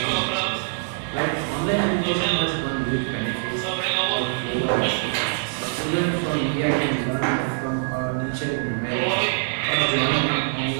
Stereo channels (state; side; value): silent; left; 63 dB below the other